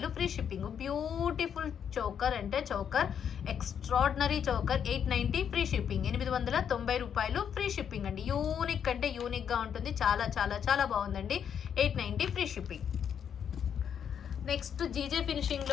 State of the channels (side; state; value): right; quieter; 8.2 dB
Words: ఫ్రీ షిప్పింగ్. బ్యూటిఫుల్ చౌకర్ అంటే choker, extraordinary choker. 890 free shipping, 890 రూపాయలు ఫ్రీ షిప్పింగ్ అండి. యూనిక్ అంటే యూనిక్గా ఉంటుంది, చాలా చాలా చాలా బాగుందండి. 890 ఫ్రీ షిప్పింగ్. నెక్స్ట్ జీజే